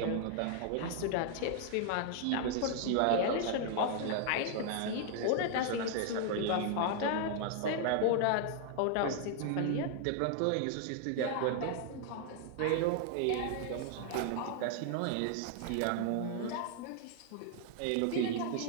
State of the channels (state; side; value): different; both; correlation 0.00